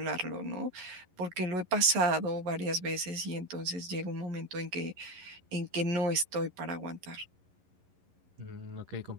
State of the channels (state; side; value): late; left; 11 ms